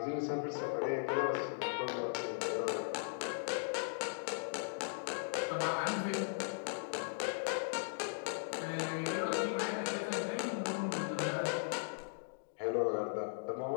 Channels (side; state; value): right; silent; digital silence